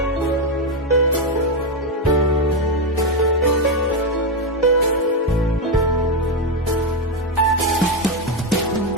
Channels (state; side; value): normal; both; correlation 0.06